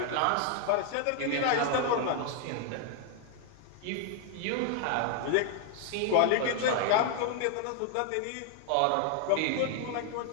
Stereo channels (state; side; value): different; both; correlation 0.00